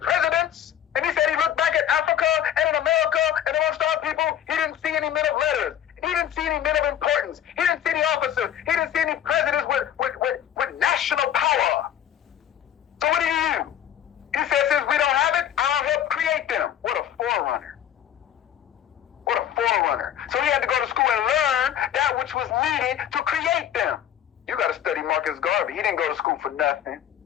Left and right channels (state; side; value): quieter; right; 10.2 dB